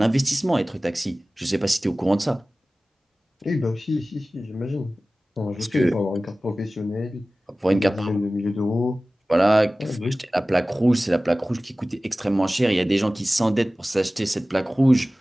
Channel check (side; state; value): both; normal; correlation 0.97